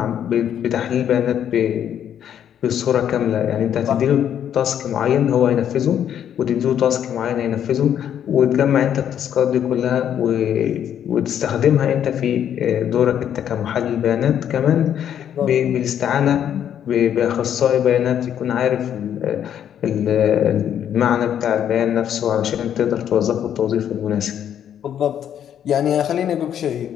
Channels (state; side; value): quieter; right; 9.6 dB